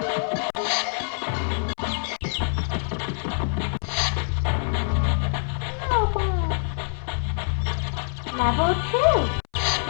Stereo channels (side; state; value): right; silent; 62 dB below the other